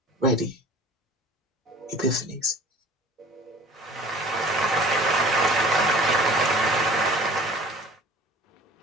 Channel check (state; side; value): normal; both; correlation 0.46